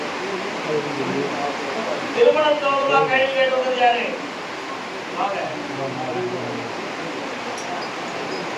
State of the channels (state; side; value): identical; both; correlation 1.00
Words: திருமணம் தோறுமா கைது கேட்டது யாரு?